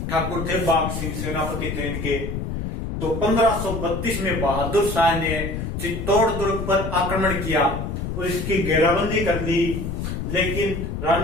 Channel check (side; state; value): left; noise; rumble, 4 dB below the sound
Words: ठाकुर थे, बाघ सिंह सेनापति थे इनके। तो 1532 में बहादुर शाह ने चित्तौड़ दुर्ग पर आक्रमण किया और इसकी घेराबंदी कर ली, लेकिन